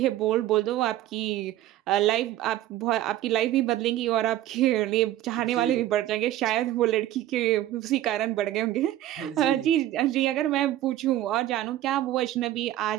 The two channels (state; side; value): quieter; left; 13.8 dB